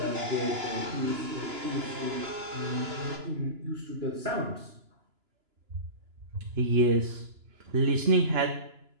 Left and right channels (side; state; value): left; late; 2.9 ms